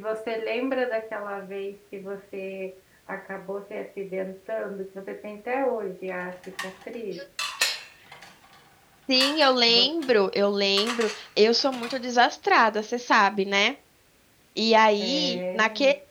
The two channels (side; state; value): both; identical; correlation 1.00